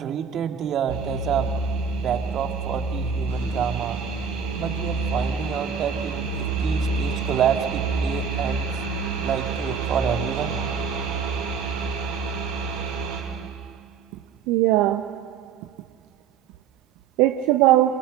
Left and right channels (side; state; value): left; quieter; 7.2 dB